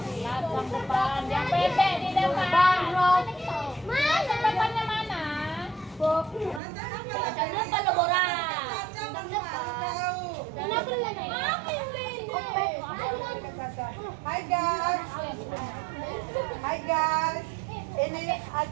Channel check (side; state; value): left; drops out; at 6.6 s